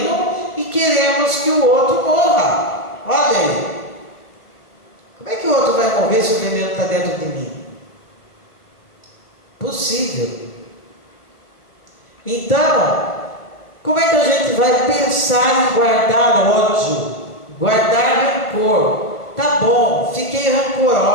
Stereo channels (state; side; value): late; right; 1.4 ms